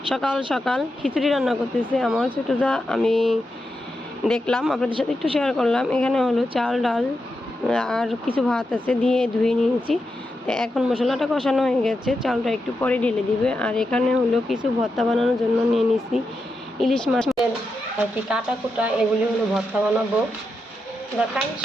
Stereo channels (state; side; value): normal; both; correlation 0.87